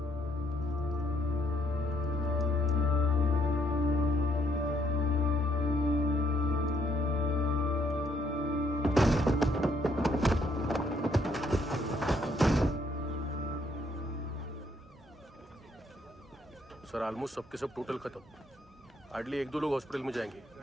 सर ऑलमोस्ट सबके सब टोटल खत्म। हार्डली 1-2 लोग हॉस्पिटल में जाएंगे,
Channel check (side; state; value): both; normal; correlation 0.70